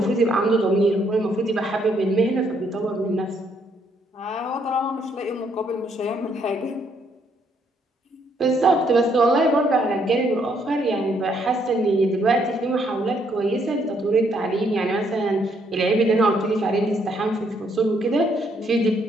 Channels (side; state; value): both; normal; correlation 0.71